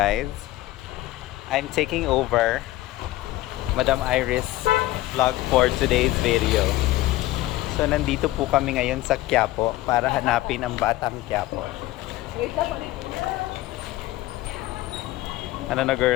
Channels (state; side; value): quieter; right; 16.7 dB